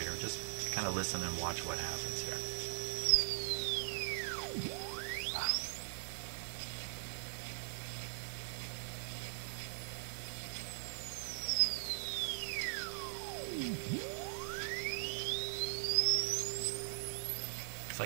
Just kind of listen and watch what happens here. Wow. It's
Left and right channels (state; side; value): silent; left; 51 dB below the other